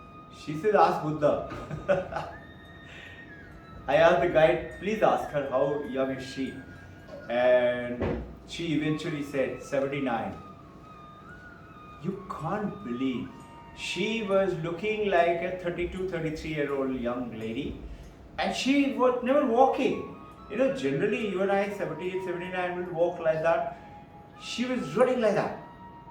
She said, ask Buddha. I asked the guide, please ask her how young is she? And she eventually said 79. You can't believe. She was looking like a 32, 33-year-old young lady. And she was never walking. You know, generally you and I, 78, 79, will walk like that. She was running like that.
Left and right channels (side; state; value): both; identical; correlation 1.00